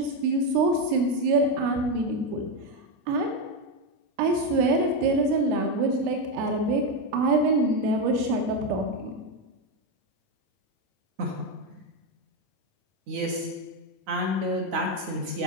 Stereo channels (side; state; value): left; late; 9.4 ms